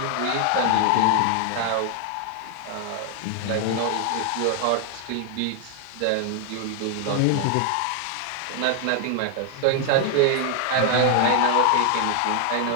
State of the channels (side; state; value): both; different; correlation 0.00